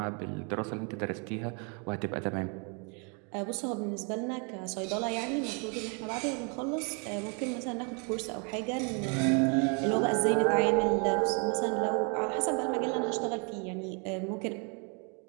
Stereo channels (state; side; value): quieter; left; 35.8 dB